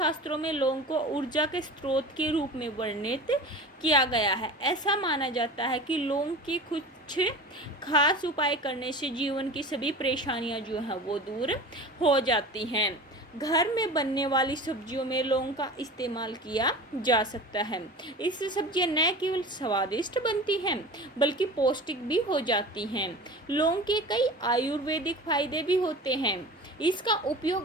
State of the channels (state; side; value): normal; both; correlation 0.35